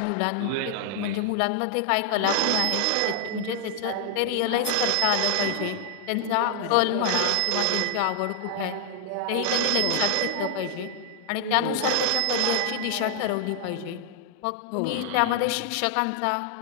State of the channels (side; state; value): both; different; correlation 0.00